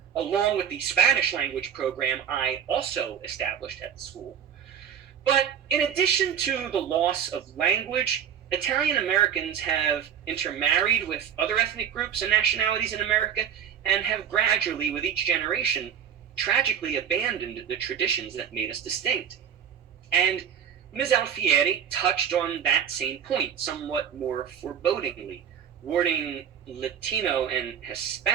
along with the Spanish language program I also established at the school. But in addition to the loss of language, Italian Americans have intermarried with other ethnic groups and nationalities in America and have gradually, with each generation, tragically abandoned the traditions that made us distinct. And Ms. Alfieri touched on that same point somewhat more forebodingly, warning Latino and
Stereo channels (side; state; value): left; quieter; 8.4 dB